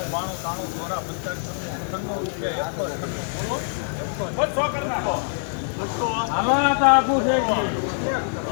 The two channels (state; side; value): silent; right; digital silence